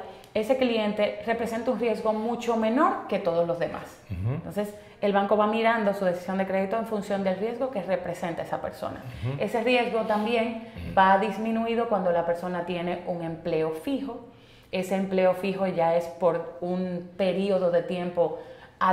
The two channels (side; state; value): both; identical; correlation 1.00